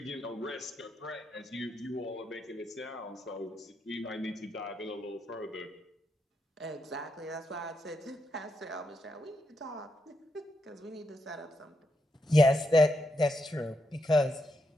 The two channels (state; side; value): normal; both; correlation 0.82